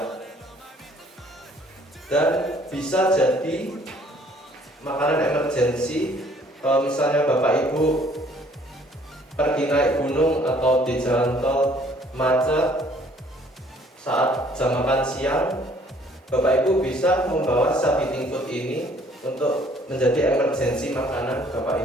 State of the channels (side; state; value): both; normal; correlation 0.59